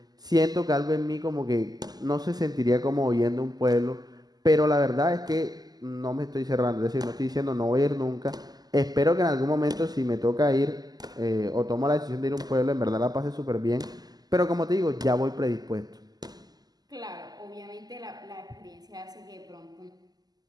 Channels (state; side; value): late; left; 0.19 ms